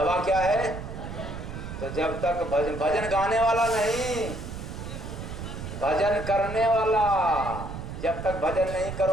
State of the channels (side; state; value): right; noise; rumble, 8 dB below the sound